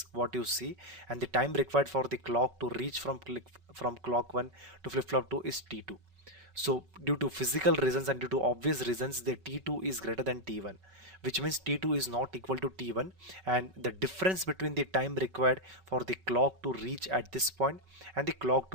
what you see, and the time required for the clock to reach from clock 1 to flip-flop 2 is T2. So due to physical reasons and due to obvious reasons, the T2 is greater than T1, which means T2 is not equal to T1, and the difference between the time required for the clock to reach at this point and the clock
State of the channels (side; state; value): left; late; 5.3 ms